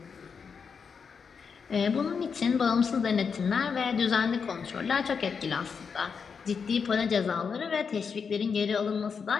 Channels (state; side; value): quieter; right; 6.0 dB